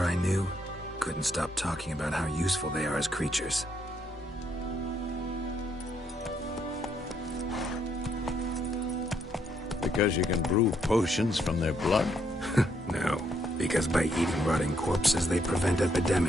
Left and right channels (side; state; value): both; normal; correlation 0.73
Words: I knew? Couldn't stop talking about how useful they are as creatures. Because you can brew potions from their blood? No, because by eating rotting corpses, they prevent